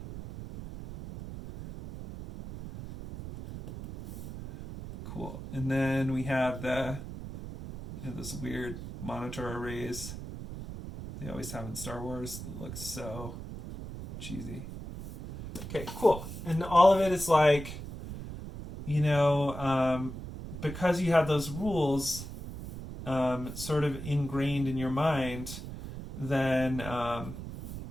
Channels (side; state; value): right; noise; rumble, 10 dB below the sound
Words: Cool. And then we have those weird monitor arrays they always have in Star Wars. It looks so cheesy. Okay, cool. And all of it is like, you know, because you have those rules sort of ingrained in your mind, then